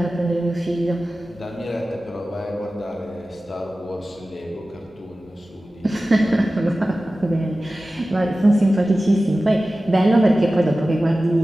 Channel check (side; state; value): both; normal; correlation 0.96